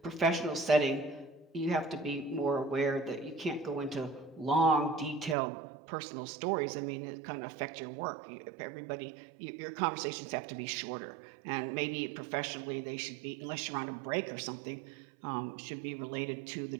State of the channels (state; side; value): drops out; left; at 5.4 s